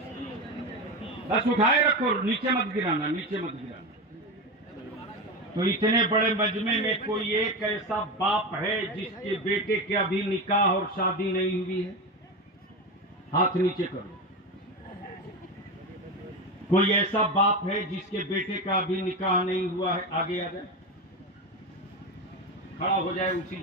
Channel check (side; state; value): both; normal; correlation 0.19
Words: बस उठाए रखो, नीचे मत गिराना, नीचे मत गिराना। तो इतने बड़े मजमे में कोई एक ऐसा बाप है जिसके बेटे के अभी निकाह और शादी नहीं हुई है? हाथ नीचे करो। कोई ऐसा बाप है जिसके बेटे का अभी निकाह नहीं हुआ है? आगे आ जाए, खड़ा हो जाए उसी